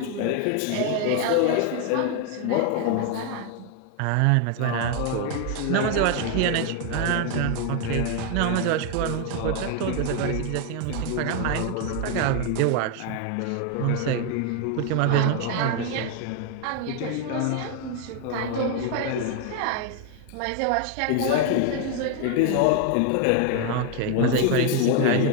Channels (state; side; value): different; both; correlation 0.01